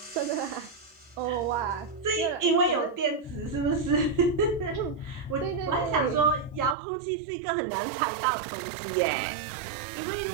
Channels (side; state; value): left; drops out; at 6.8 s